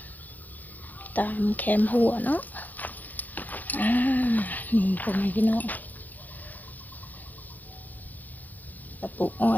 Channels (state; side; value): late; right; 0.082 ms